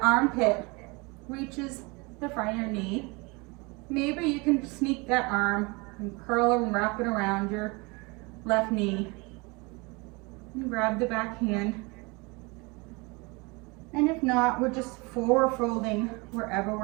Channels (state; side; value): quieter; left; 27.4 dB